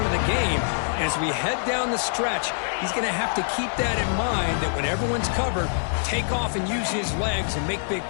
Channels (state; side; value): silent; right; digital silence